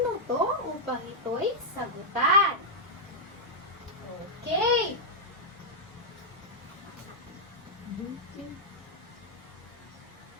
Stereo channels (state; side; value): normal; both; correlation -0.06